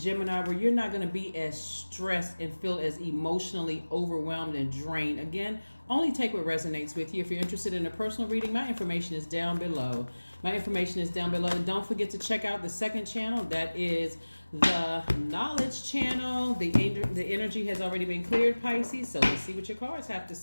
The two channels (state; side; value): inverted; both; correlation -1.00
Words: where you're not going to be as stressed and feel as emotionally overwhelmed and drained. Again, only take what resonates with you. If you're interested in a personal reading, my information is down below. Don't forget to check out the second channel. That is the knowledge channel. The energy has already been cleared, Pisces. So let's see what your cards have to